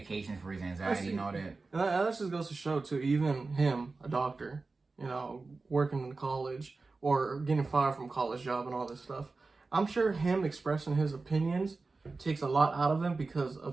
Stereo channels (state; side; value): quieter; left; 3.8 dB